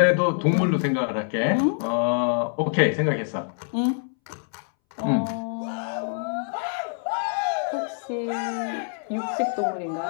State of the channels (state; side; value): silent; right; 62 dB below the other